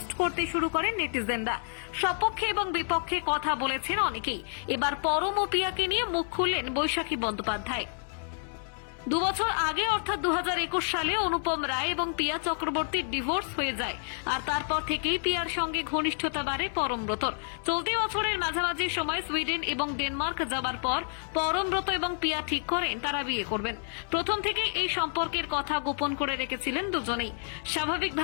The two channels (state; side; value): silent; right; 58 dB below the other